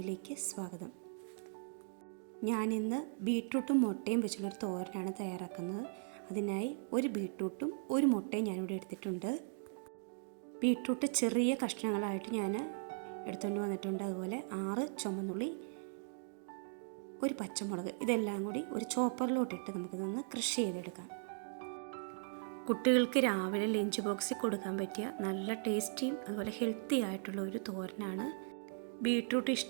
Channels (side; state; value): left; silent; digital silence